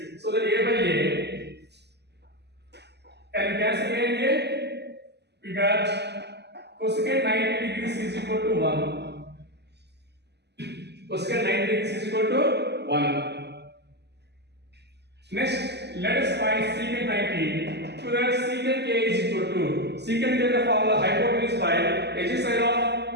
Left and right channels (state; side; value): late; left; 0.49 ms